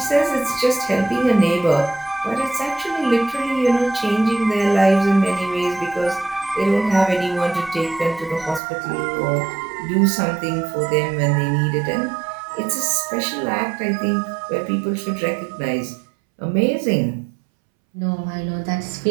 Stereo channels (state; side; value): drops out; left; at 8.6 s